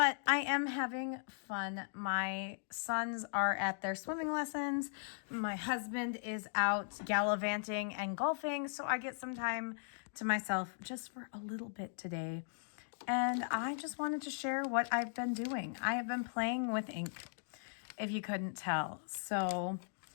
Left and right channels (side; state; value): right; silent; digital silence